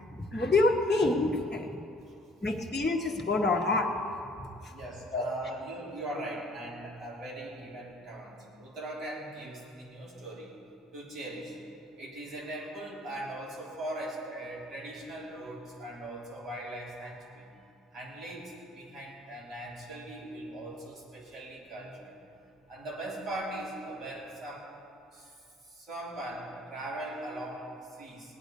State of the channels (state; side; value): normal; both; correlation 0.57